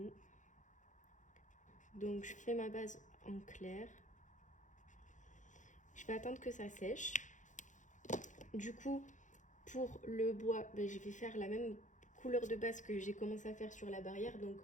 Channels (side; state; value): right; late; 0.36 ms